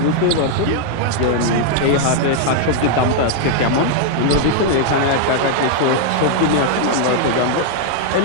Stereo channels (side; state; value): both; different; correlation 0.00